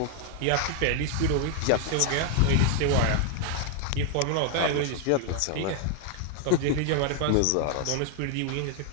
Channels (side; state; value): both; different; correlation 0.00